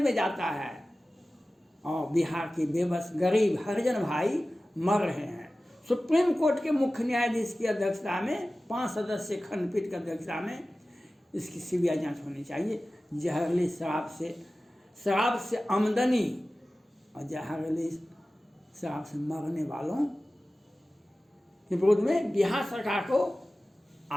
जाता है, और बिहार के बेबस गरीब हरिजन भाई मर रहे हैं। सुप्रीम कोर्ट के मुख्य न्यायाधीश की अध्यक्षता में 5 सदस्यीय खंडपीठ की अध्यक्षता में इसकी सीबीआई जांच होनी चाहिए। जहरीली शराब से आमदनी और जहरीली शराब से मरने वालों के विरोध में बिहार सरकार को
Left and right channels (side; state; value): both; normal; correlation 0.96